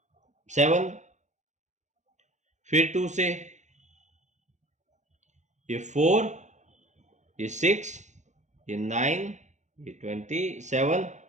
फिर 2 से ये 4, ये 6, ये 9, ये 27।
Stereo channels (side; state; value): left; late; 0.34 ms